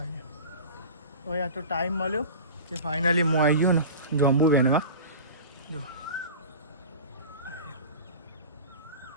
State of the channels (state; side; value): inverted; both; correlation -0.34